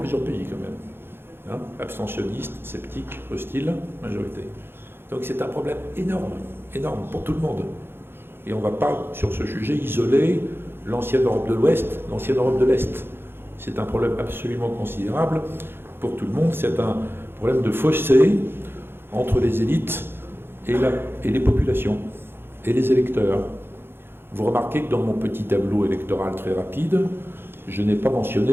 pays quand même. Abstentionnistes, sceptiques, hostiles, majorité. Donc c'est un problème énorme pour tout le monde. Et on ne va pas, sur ce sujet, isoler l'ancienne Europe de l'Ouest, l'ancienne Europe de l'Est. C'est un problème absolument considérable pour tout le monde. C'est un problème de fossé entre les élites et les populations, et les électeurs. Vous remarquez que dans mon petit tableau électoral très rapide, je n'ai pas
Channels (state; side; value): late; left; 0.11 ms